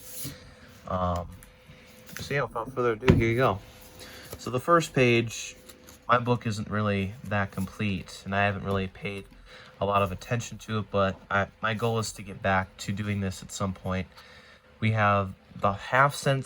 So yeah, without further ado, here you go. So the first page, my book isn't really that complete, and I haven't really paid a lot of attention to it, but my goal is to get back to doing this at some point. We have the half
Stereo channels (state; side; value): identical; both; correlation 1.00